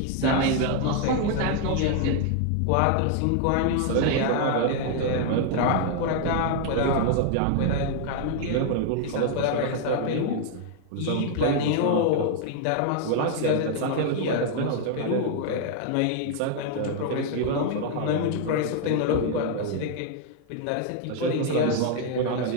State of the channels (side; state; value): both; different; correlation 0.00